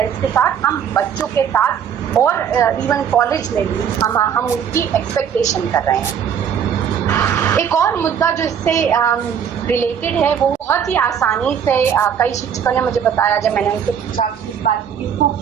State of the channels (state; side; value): quieter; left; 8.1 dB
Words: के साथ, हम बच्चों के साथ और इवन कॉलेज में भी हम उसकी एक्सपेक्टेशन कर रहे हैं। एक और मुद्दा जो इससे रिलेटेड है वो बहुत ही आसानी से कई शिक्षकों ने मुझे बताया, जब मैंने उनसे पूछा कि इस बात इसको